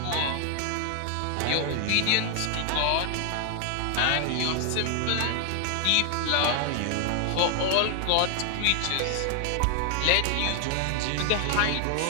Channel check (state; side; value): different; both; correlation 0.00